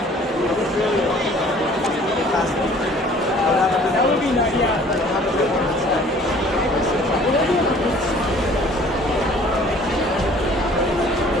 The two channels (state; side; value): normal; both; correlation 0.53